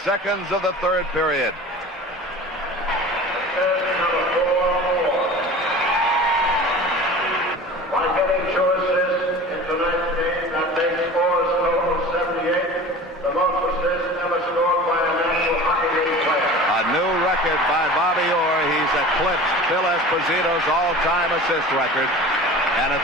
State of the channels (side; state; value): both; normal; correlation 0.38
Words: of the 3rd period. By Bobby Orr, he's eclipsed Phil Esposito's all-time assist record, and